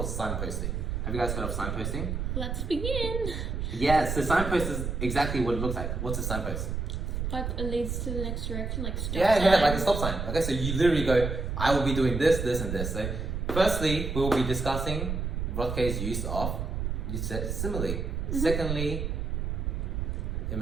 signposting. Have you guys heard of signposting? Let's begin. Yeah, so signpost is exactly what it looks like. What's a signpost? Like it leads to the next direction, like stop Yeah, sign. like a stop sign. Okay, so you literally go, I will be doing this, this, and this. So, firstly, we will be discussing Rothke's use of, you said, simile. Secondly,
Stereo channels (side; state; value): right; noise; rumble, 2 dB below the sound